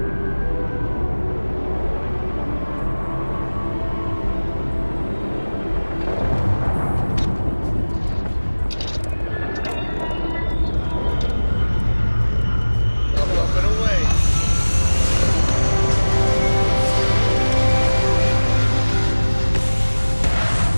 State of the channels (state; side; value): inverted; both; correlation -1.00